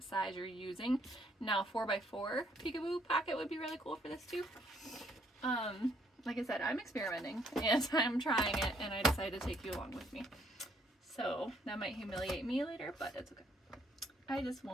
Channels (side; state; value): both; normal; correlation 0.68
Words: size you're using. Now 4x4 Peekaboo Pocket would be really cool for this too. Like I said, I'm experimenting and I'm trying it, and I decided to take you along with me. So that might humiliate me later, but it's okay. I just